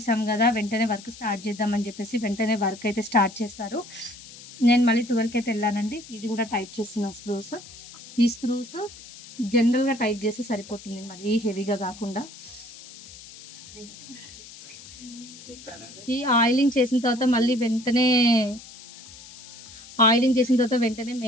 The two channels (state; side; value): noise; left; hiss, 17 dB below the sound